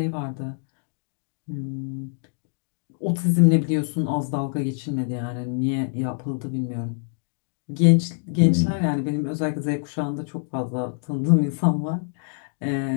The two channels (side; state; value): right; silent; 62 dB below the other